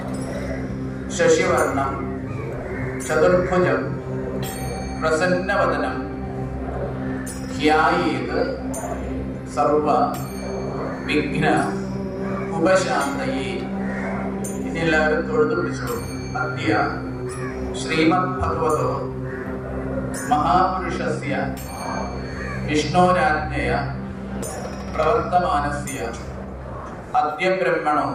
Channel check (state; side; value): identical; both; correlation 1.00